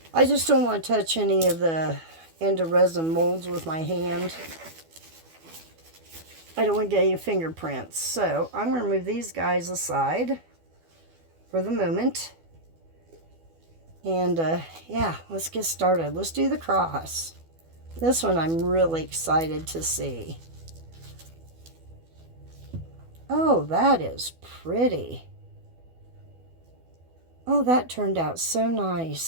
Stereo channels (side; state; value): left; late; 12 ms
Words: I just don't want to touch any of the into resin molds with my hand. I don't want to get any fingerprints. So I'm going to move these guys aside for the moment. And yeah, let's get started. Let's do the cross. This one I'm really excited to see. Oh, that is pretty. Oh, that turned out so